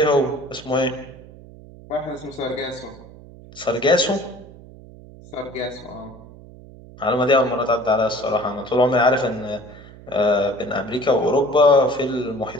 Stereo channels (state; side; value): noise; right; hum, 19 dB below the sound